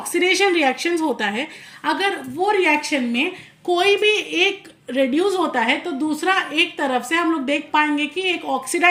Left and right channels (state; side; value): identical; both; correlation 1.00